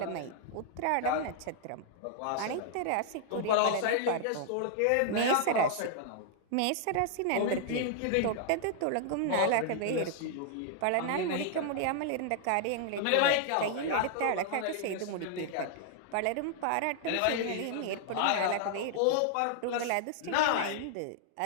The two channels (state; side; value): different; both; correlation -0.01